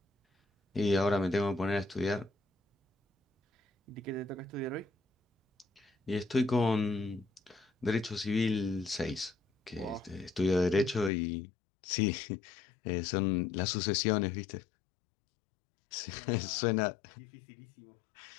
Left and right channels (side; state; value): right; drops out; at 11.1 s